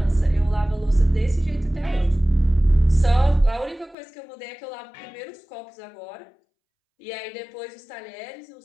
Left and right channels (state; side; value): drops out; right; at 4.0 s